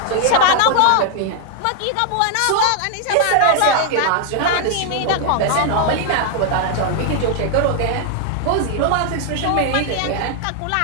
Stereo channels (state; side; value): different; both; correlation 0.00